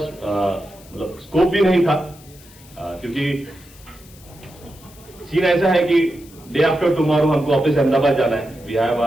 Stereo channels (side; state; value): left; noise; hiss, 23 dB below the sound